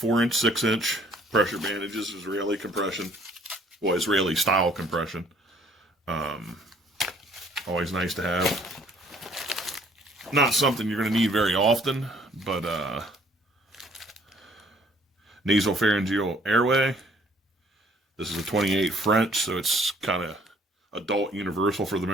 6-inch pressure bandages. Israeli compression. Well, Israeli style compression. Always nice to have. Not something you're going to need very often, but nasopharyngeal Airway. This is a 28 French, so it's kind of adult universal for the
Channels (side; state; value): both; normal; correlation 0.60